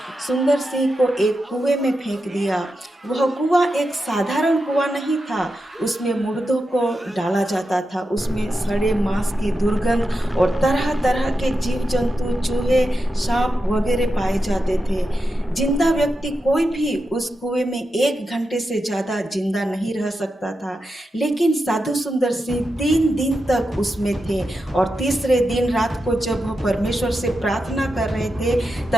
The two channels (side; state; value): both; normal; correlation 0.88